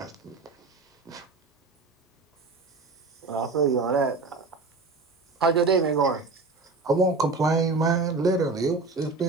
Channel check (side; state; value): left; quieter; 3.8 dB